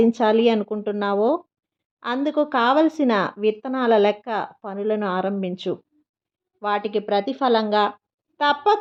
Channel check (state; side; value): identical; both; correlation 1.00